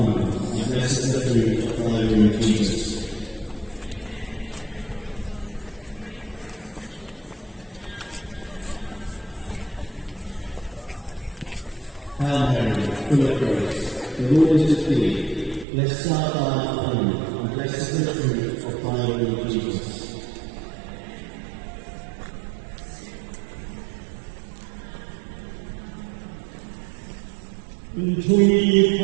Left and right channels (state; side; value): drops out; left; at 15.7 s